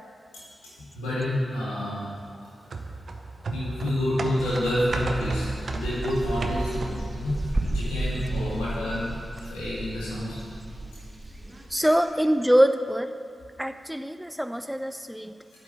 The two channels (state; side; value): normal; both; correlation 0.94